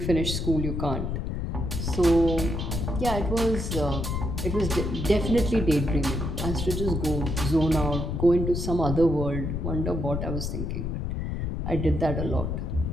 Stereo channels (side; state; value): left; noise; rumble, 2 dB below the sound